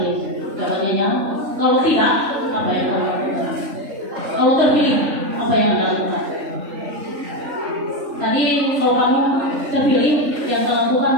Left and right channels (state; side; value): late; left; 3.5 ms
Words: jawabannya kalau tidak, apa yang Anda lakukan? Kalau terpilih, apa yang Anda lakukan? Tadi kalau kamu terpilih, yang Anda